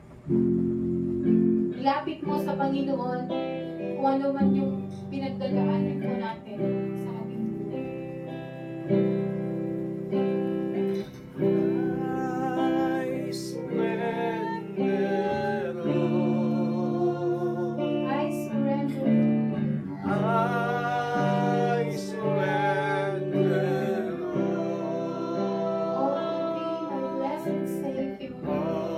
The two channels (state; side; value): identical; both; correlation 1.00